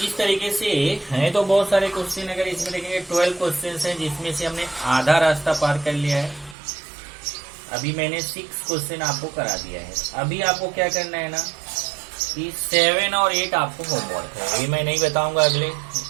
इस तरीके से हैं तो बहुत सारे क्वेश्चन, अगर इसमें देखेंगे 12 क्वेश्चन हैं जिसमें से हमने आधा रास्ता पार कर लिया है। अभी मैंने 6 क्वेश्चन आपको करा दिया है। अभी आपको क्या करना है ना कि 7 और 8 आपको होमवर्क है, ये मैं नहीं बताऊंगा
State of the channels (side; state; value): left; drops out; at 6.6 s